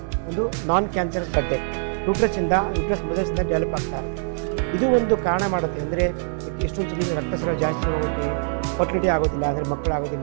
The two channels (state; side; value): silent; left; digital silence